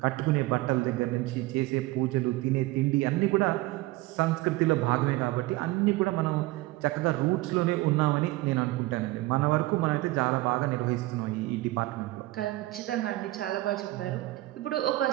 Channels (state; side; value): quieter; left; 19.0 dB